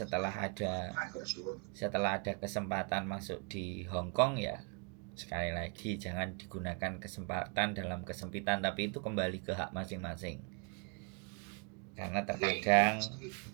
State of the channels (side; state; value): left; quieter; 34.9 dB